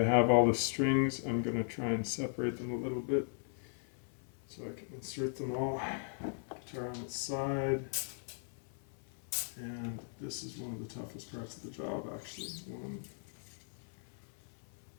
have all the strings. I'm going to try and separate them a little bit so I can insert them all. Guitar on its side. And this is one of the toughest parts of the job, actually. 1,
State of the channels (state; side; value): silent; right; 53 dB below the other